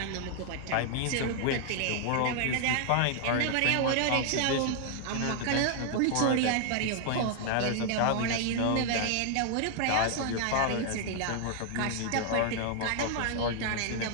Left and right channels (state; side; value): different; both; correlation 0.00